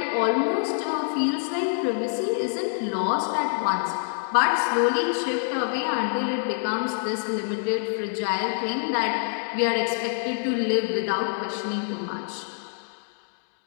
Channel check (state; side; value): silent; right; digital silence